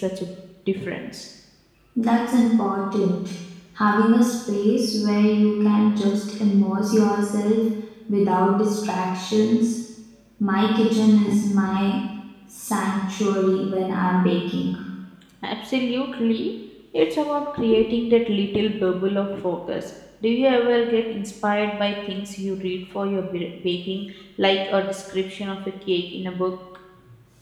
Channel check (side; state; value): both; identical; correlation 1.00